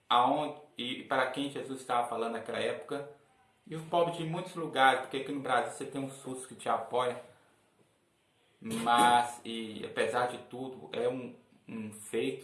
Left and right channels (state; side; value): identical; both; correlation 1.00